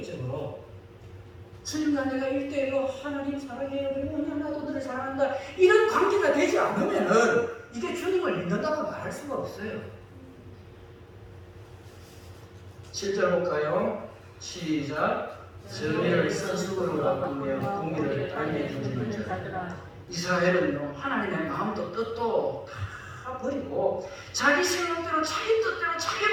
주님과 내가 1대1로 하나님 사랑해요, 그리고 나도 너를 사랑한다, 이런 관계가 되지 않으면은 이게 주님을 믿는다고 말할 수가 없어요. 7절 볼까요? 시작. 정의를 선수로 바꾸며 공의를 땅에 던지는 자. 이스라엘은 하나님의 마음도 뜻도 다 버리고 자기 생각대로, 자기 뜻대로, 자기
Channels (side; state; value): both; identical; correlation 1.00